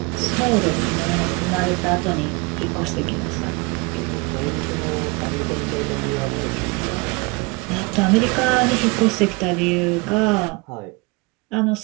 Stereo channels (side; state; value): left; quieter; 26.9 dB